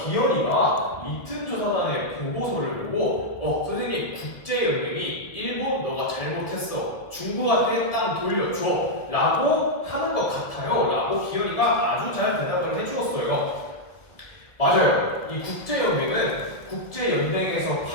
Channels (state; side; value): late; right; 1.6 ms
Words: 기현이가 리튼 조사단의 보고서를 보고 선생님 국제연맹이 일본 너가 잘못했어. 중국한테 땅 돌려줘 라고 하는 것 같아요 라고 기현이가 아주 잘 대답을 해주었어요. 맞아요. 이 국제연맹은 국제연맹에서